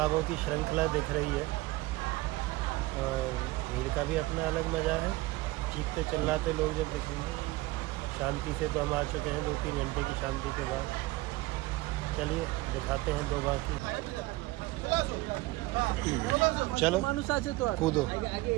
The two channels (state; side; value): quieter; left; 20.1 dB